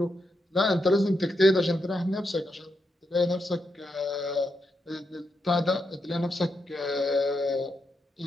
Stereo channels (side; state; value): both; normal; correlation 0.83